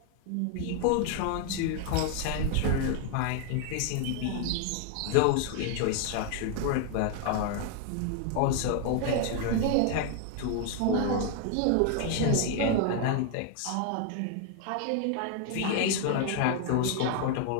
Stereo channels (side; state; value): both; different; correlation 0.00